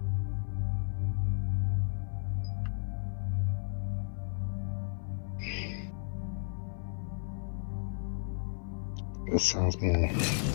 That sounds more.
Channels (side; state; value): right; silent; 55 dB below the other